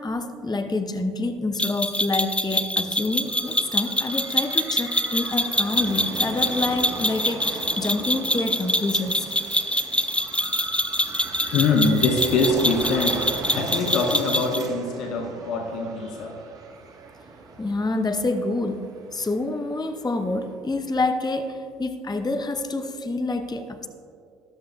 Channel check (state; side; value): normal; both; correlation 0.51